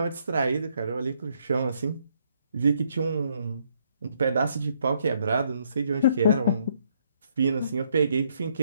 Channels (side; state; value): both; inverted; correlation -0.71